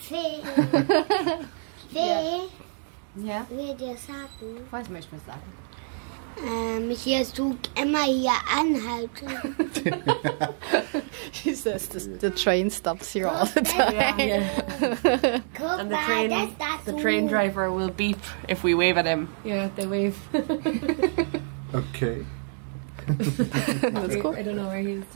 Ja? Will dir sagen? Was möchtest du sagen? Hier tut immer hier anhalten. She says the train stops here all the time. Guck and mal, the train driver will beep if we wave at him. Yeah, they wave. Okay. That's cool. I don't know where he is.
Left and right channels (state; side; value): silent; left; digital silence